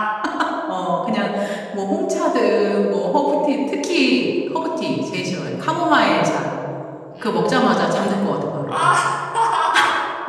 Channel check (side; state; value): both; identical; correlation 1.00